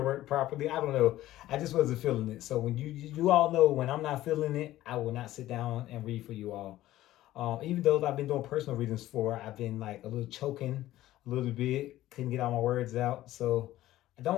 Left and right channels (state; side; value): quieter; right; 14.9 dB